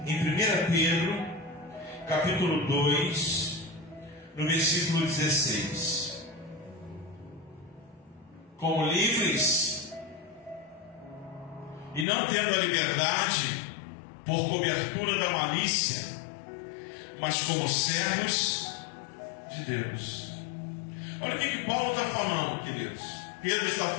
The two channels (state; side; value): drops out; right; at 12.1 s